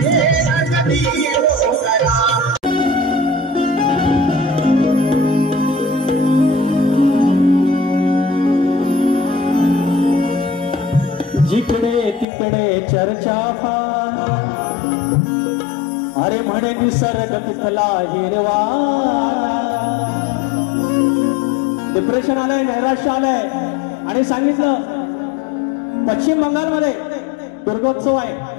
जिकडे तिकडे चर्चा फार अरे म्हणे निसर्ग तिथला हिरवा डिप्रेशन आलंय नैराश्य आलंय आणि सांगितलं पश्चिम बंगालमध्ये दुर्गोत्सव आहे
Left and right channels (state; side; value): drops out; right; at 12.2 s